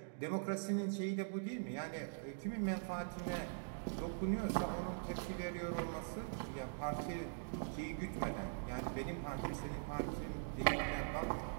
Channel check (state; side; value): silent; left; digital silence